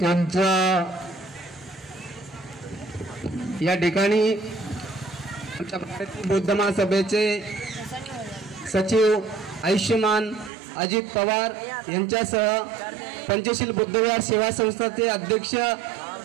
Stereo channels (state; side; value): drops out; left; at 10.5 s